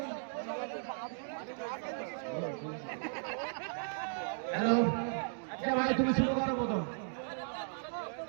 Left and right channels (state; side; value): silent; left; digital silence